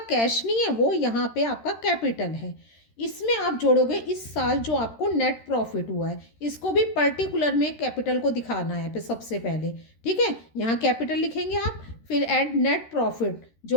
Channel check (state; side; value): late; right; 13 ms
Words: नहीं है, वो यहाँ पे आपका कैपिटल है। इसमें आप जोड़ोगे इस साल जो आपको नेट प्रॉफिट हुआ है, इसको भी पर्टिकुलर में कैपिटल को दिखाना है फिर सबसे पहले। ठीक है, यहाँ कैपिटल लिखेंगे आप, फिर ऐड नेट प्रॉफिट